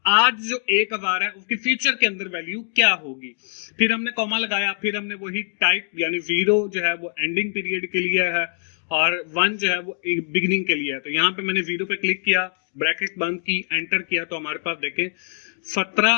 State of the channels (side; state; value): right; silent; digital silence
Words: आज जो 1000 है उसकी फ्यूचर के अंदर वैल्यू क्या होगी। फिर हमने कॉमा लगाया, फिर हमने वही टाइप यानी 0 जो है वो एंडिंग पीरियड के लिए है और 1 जो है वो बिगिनिंग के लिए है। तो यहाँ पे मैंने 0 पे क्लिक किया, ब्रैकेट बंद की, एंटर किया, तो हमारे पास देखें